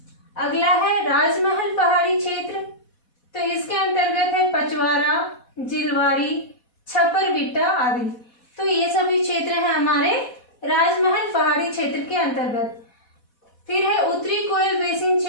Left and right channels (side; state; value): right; late; 4.2 ms